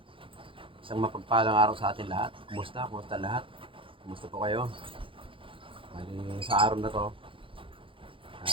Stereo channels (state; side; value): late; left; 0.25 ms